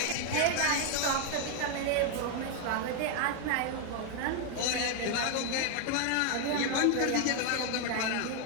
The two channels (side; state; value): both; different; correlation 0.01